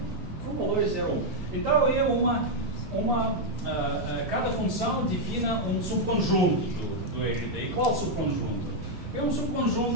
com valores 0, 1. Então é cada função define um subconjunto do RD. E qual subconjunto? É um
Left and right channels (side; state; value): both; normal; correlation -0.01